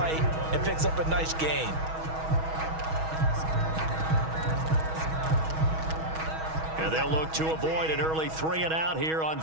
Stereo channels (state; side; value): late; left; 6.2 ms